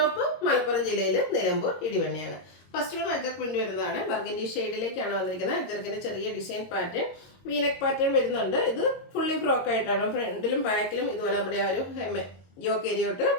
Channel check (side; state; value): right; late; 22 ms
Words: മലപ്പുറം ജില്ലയിൽ നിലമ്പൂർ ഇടിവണ്ണയാണ്. ഫസ്റ്റ് വൺ അജർക്ക് പ്രിന്റ് വരുന്നതാണ്. ബർഗൻഡി ഷെയ്ഡിലേക്കാണ് വന്നിരിക്കുന്നത്. അജർക്കിന്റെ ചെറിയ ഡിസൈൻ പാറ്റേൺ, വീനക്ക് പാറ്റേൺ വരുന്നുണ്ട്. ഇത് ഫുള്ളി ഫ്രോക്ക് ആയിട്ടാണ്. ഫ്രണ്ടിലും ബാക്കിലും ഇതുപോലെ നമ്മുടെ ആ ഒരു യോക്ക് ഏരിയോട്ട്